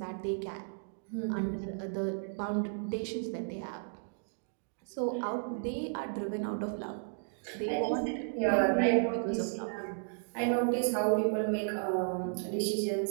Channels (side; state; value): left; silent; digital silence